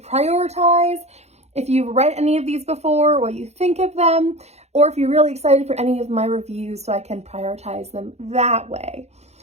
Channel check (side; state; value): left; late; 0.31 ms